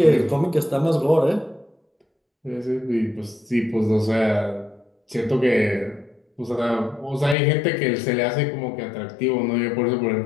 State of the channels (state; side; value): drops out; right; at 7.4 s